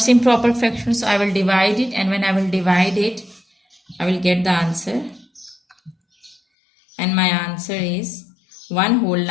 improper fraction, so I will divide it, and when I will divide it, I will get the answer. And my answer is 1 whole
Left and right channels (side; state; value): right; drops out; at 6.4 s